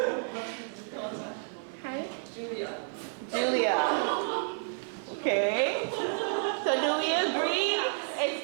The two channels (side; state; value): left; silent; 57 dB below the other